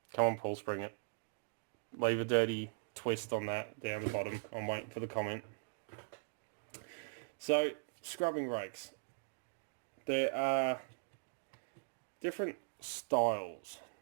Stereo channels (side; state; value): left; silent; digital silence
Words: Come on Paul, spring it. Leave a dirty twist on that down the bottom. I'm waiting for the comment. So, scrubbing rakes. There are different styles